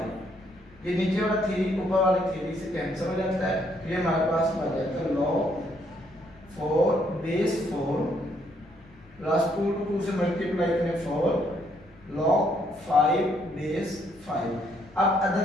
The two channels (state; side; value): noise; left; rumble, 26 dB below the sound